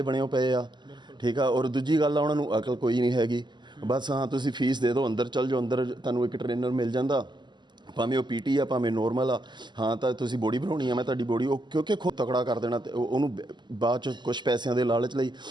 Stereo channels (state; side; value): late; left; 0.21 ms